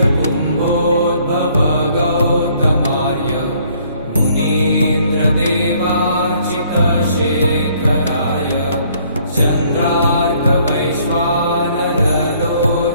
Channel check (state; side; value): inverted; both; correlation -0.63